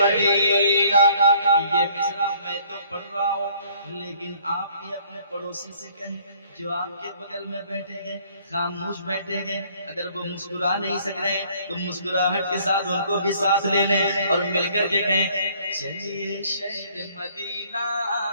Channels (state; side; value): inverted; both; correlation -0.60